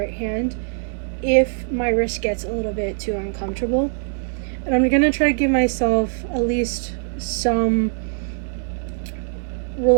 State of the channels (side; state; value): left; silent; 60 dB below the other